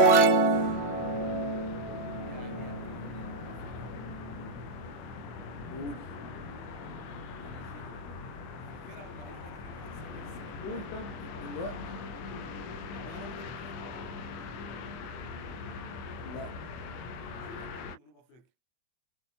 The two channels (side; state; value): right; late; 24 ms